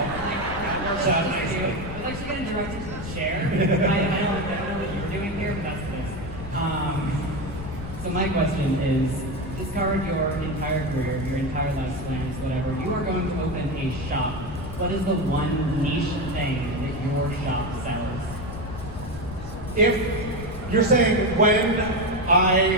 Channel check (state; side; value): noise; left; rumble, 9 dB below the sound